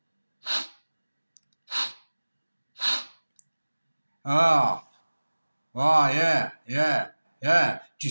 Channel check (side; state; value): both; inverted; correlation -1.00